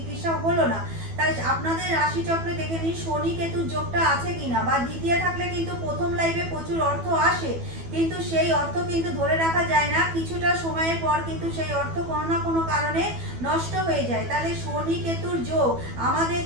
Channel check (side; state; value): left; late; 12 ms